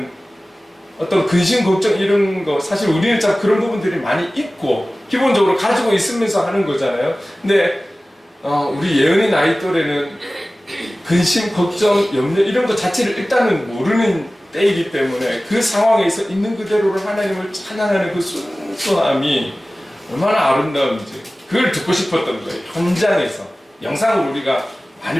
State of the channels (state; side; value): normal; both; correlation 0.97